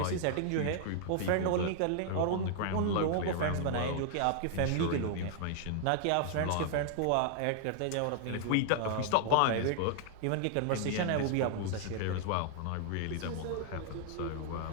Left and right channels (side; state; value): both; different; correlation 0.00